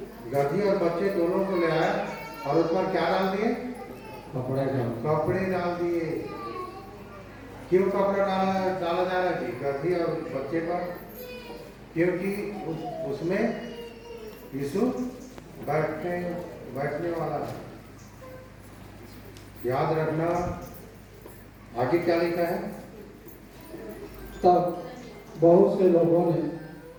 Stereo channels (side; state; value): both; identical; correlation 1.00